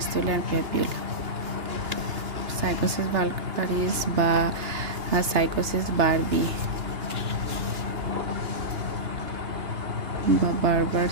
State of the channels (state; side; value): late; left; 2.9 ms